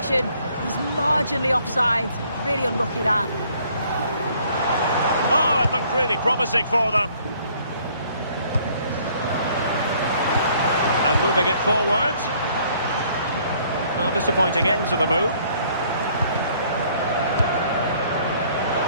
He's marginally offside. Really unlucky that. Oh, it looked really promising for them. And moving it forward. Well, disappointing end to the move.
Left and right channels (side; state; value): both; inverted; correlation -0.61